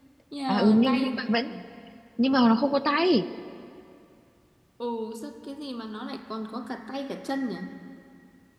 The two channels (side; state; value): both; identical; correlation 1.00